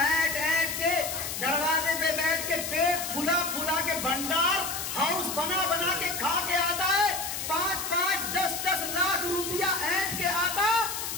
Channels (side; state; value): left; noise; hiss, 5 dB below the sound